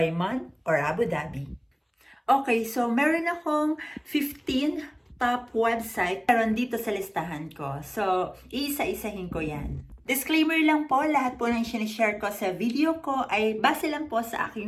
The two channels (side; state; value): both; identical; correlation 1.00